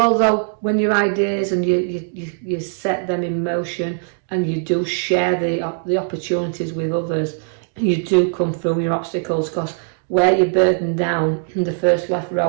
although when your ideas and you set them in motion and you do share the opportunities with others, you do come through your obstacles, because where you're burdened down in the first left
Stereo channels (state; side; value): silent; left; digital silence